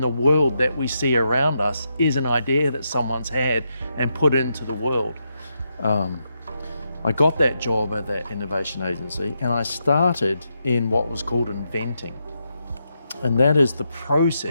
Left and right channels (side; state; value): both; inverted; correlation -0.83